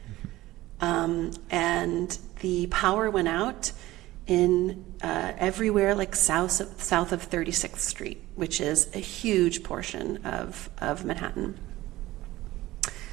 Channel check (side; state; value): left; quieter; 17.1 dB